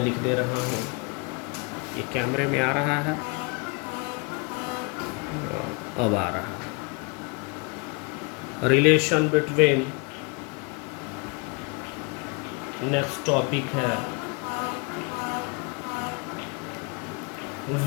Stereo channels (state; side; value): quieter; right; 29.5 dB